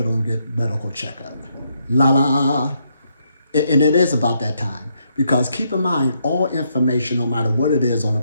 and get medical checkup. And it is about that time. Because keep in mind, all information, no matter what it is on the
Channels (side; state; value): both; inverted; correlation -0.76